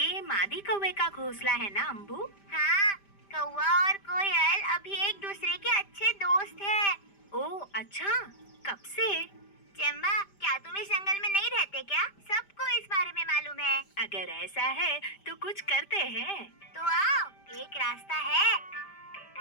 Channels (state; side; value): late; right; 5.0 ms